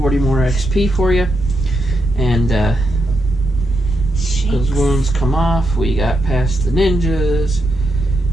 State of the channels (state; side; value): normal; both; correlation 0.82